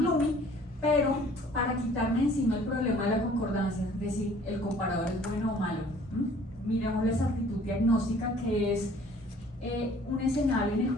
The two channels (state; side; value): normal; both; correlation 0.54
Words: Pero para quitarme encima el problema de la concordancia, es decir, el comparador es bueno o malo, miremos la exactitud diagnóstica, que es un escenario en el